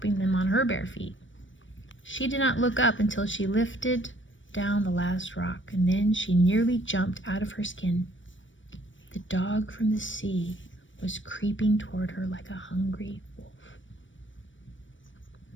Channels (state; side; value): late; right; 0.56 ms